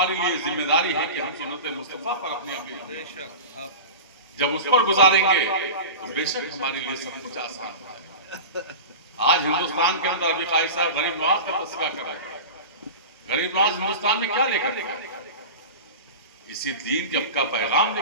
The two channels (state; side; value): inverted; both; correlation -0.30